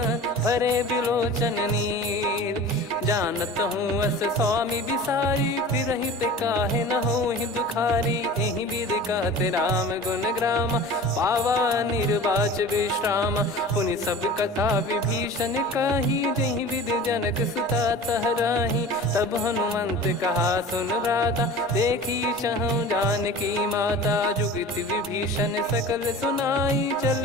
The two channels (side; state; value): both; normal; correlation 0.38